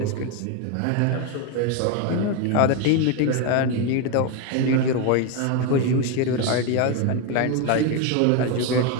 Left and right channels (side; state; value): both; different; correlation 0.02